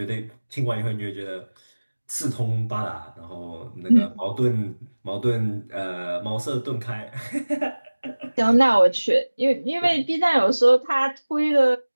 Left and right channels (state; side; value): inverted; both; correlation -1.00